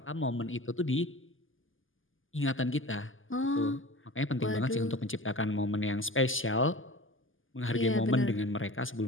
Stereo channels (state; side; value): late; right; 0.58 ms